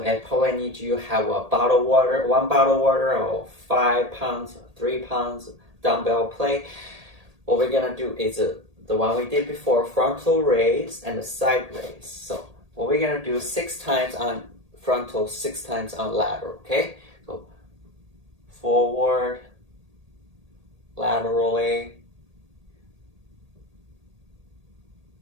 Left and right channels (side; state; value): left; late; 1.8 ms